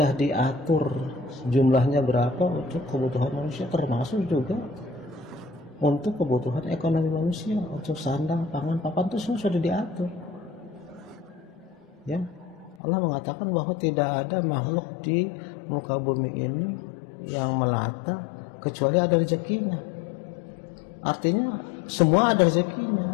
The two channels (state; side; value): drops out; right; at 12.8 s